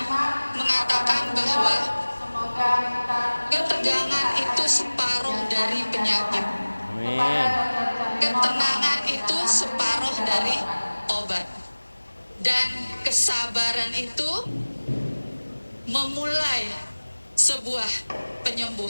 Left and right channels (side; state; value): both; inverted; correlation -1.00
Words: mengatakan bahwa ketegangan itu separuh dari penyakit. Amin. Ketenangan itu separuh dari obat. Dan kesabaran itu memulai sebuah